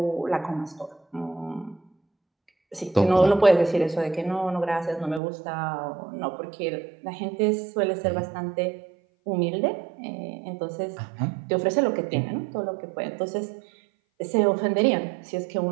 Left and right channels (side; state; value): left; drops out; at 5.2 s